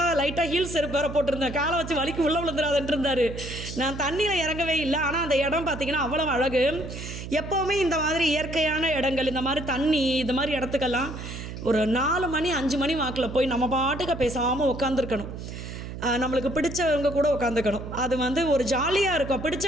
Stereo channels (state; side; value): noise; right; hum, 9 dB below the sound